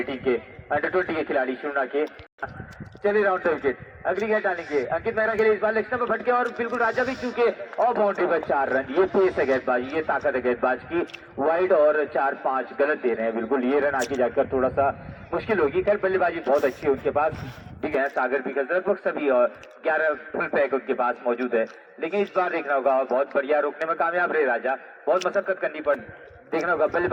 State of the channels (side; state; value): both; identical; correlation 1.00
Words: के अंडर 20 के खिलाड़ी शुना के। चलिए राउंड विकेट, अगली गेंद डालेंगे अंकित मेहरा के लिए। इस बार लेग स्टंप पर भटके और बिल्कुल राजा भी चूके और बाउंड्री पर 4 रन। ये पेस है गेंदबाजी, ये ताकत है गेंदबाज की। वाइड और 4-5 गलत दे रहे हैं, बिल्कुल ये रन आगे जाकर थोड़ा सा मुश्किल होगी। खैर बल्लेबाजी बहुत अच्छी है उनके पास, भी है सागर भी लगभग सभी और 11 फुल पैक उनके पास मौजूद है। लेकिन इस बार देखना होगा, बहुत बढ़िया रोकने में कामयाब रहे राजा, बहुत मशक्कत करनी पड़ी। देखना होगा